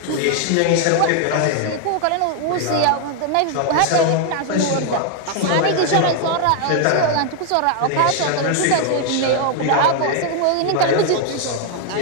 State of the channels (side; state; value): both; different; correlation 0.00